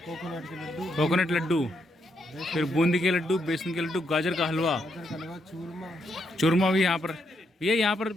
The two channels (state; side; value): normal; both; correlation 0.78